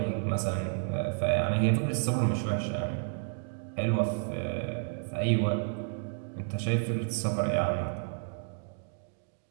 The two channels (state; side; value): silent; left; 57 dB below the other